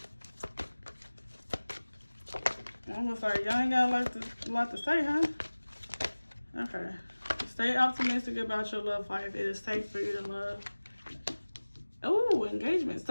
Almost like y'all ain't got a lot to say, huh? Okay. Stay optimistic about your love life. It is safe for you to love. Oh, engagement.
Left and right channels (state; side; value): inverted; both; correlation -1.00